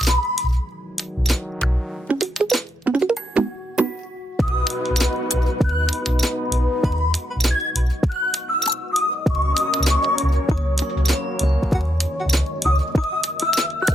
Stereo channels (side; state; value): both; normal; correlation 0.82